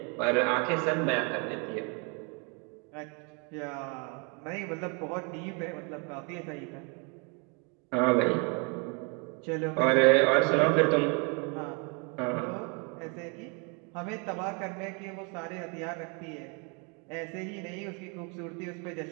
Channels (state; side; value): quieter; left; 34.2 dB